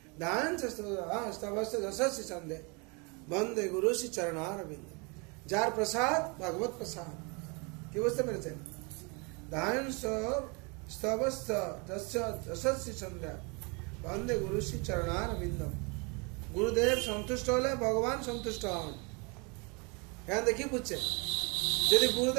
দান সন্ধে বন্দে গুরু শ্রী চরণারবিন্দ। যার প্রসাদ ভগবত প্রসাদ, কি বুঝতে পেরেছেন? দান সন্ধ্যা বন্দে গুরু শ্রী চরণারবিন্দ। গুরুদেব সন্তুষ্ট হলে ভগবান সন্তুষ্ট হন। এখানে দেখি বুঝছেন, যদি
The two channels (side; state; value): left; quieter; 31.6 dB